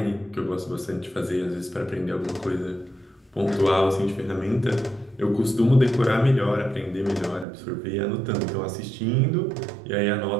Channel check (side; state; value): left; drops out; at 7.5 s